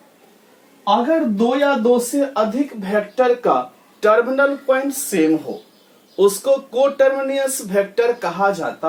अगर दो या दो से अधिक वेक्टर का टर्मिनल पॉइंट सेम हो, उसको कोटर्मिनियस वेक्टर कहा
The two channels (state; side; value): identical; both; correlation 1.00